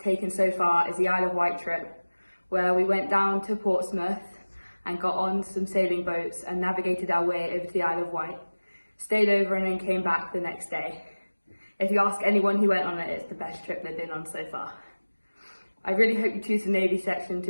so far is the Isle of Wight trip, where we went down to Portsmouth and got on some sailing boats and navigated our way over to the Isle of Wight, stayed over and then came back the next day. If you ask anyone who went on it, it's the best trip they've been on so far. I really hope you choose the Navy section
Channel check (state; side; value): inverted; both; correlation -1.00